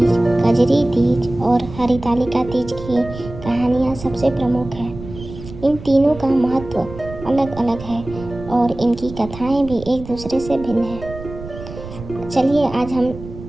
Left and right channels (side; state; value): right; noise; rumble, 13 dB below the sound